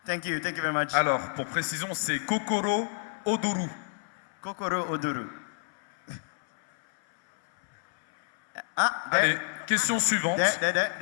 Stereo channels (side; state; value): right; silent; 59 dB below the other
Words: Thank you very much. Alors, pour précision, c'est Kokoro Odoru. Kokoro odoru. Ah, there. Allez, question suivante. There.